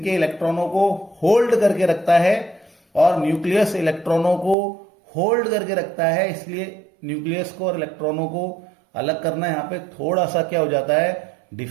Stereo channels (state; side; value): drops out; left; at 4.5 s